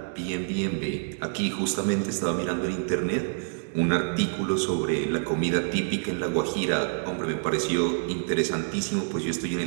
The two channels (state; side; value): silent; left; digital silence